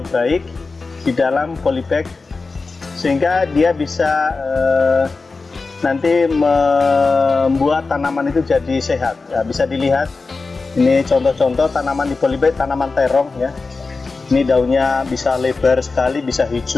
baik di dalam polybag sehingga dia bisa nanti membuat tanaman itu jadi sehat. Ya, bisa dilihat ini contoh-contoh tanaman di polybag, tanaman terong ya. Ini daunnya bisa lebar sekali, bisa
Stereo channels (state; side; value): quieter; right; 4.0 dB